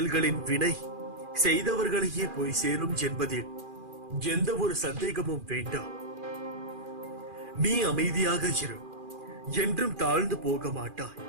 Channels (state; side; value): late; left; 2.4 ms